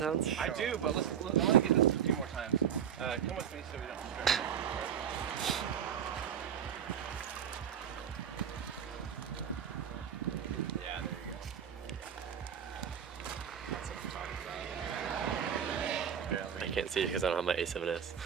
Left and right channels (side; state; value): left; quieter; 8.6 dB